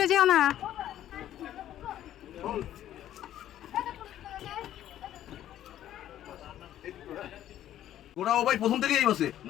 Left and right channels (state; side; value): quieter; right; 12.0 dB